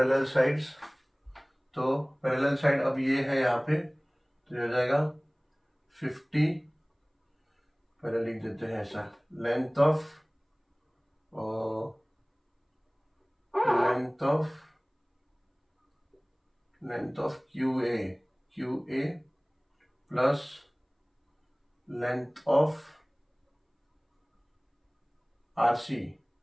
sides. तो पैरेलल साइड अब ये है यहाँ पे, तो ये हो जाएगा 50, पहले लिख देते हैं ऐसा, length of QA plus length of RC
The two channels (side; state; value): both; identical; correlation 1.00